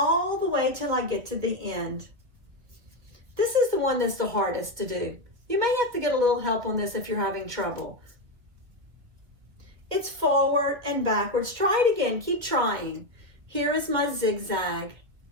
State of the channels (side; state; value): left; late; 2.1 ms